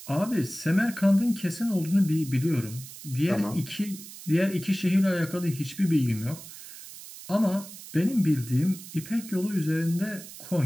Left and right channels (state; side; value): noise; right; hiss, 15 dB below the sound